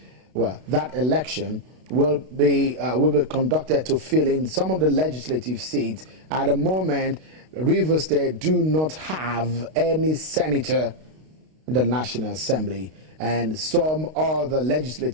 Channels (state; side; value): late; left; 32 ms